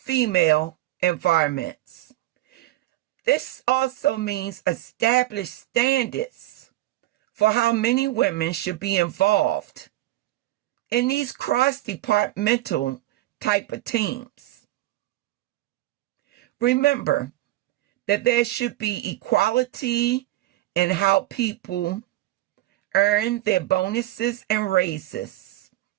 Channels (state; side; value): quieter; left; 16.1 dB